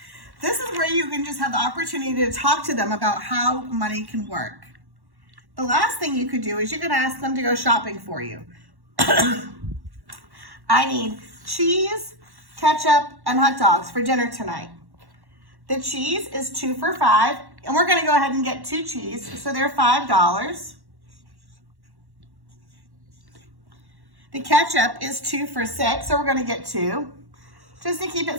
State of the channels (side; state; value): left; late; 1.1 ms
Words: This is where you can just have the opportunity to talk to them about how money can work. The last thing you could do is you could ask them to go shopping for you. I need cheese, ketchup, and hot dogs for dinner tonight. The cheese is 2 for $5, and we're gonna go ahead and get 2 cheese, so they're $5. The ketchup is 2 for $6, so we're gonna get 2, just to keep